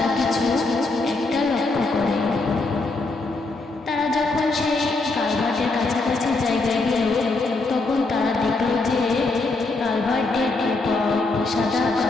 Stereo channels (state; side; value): quieter; right; 3.4 dB